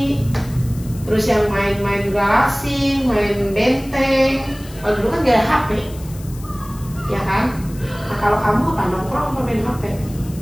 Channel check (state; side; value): noise; left; hiss, 20 dB below the sound